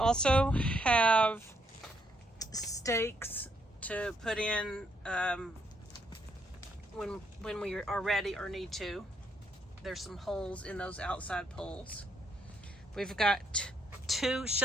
have stakes to put in when we are ready or need to. There's some holes in those outside poles. We've got 2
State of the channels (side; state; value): both; normal; correlation 0.74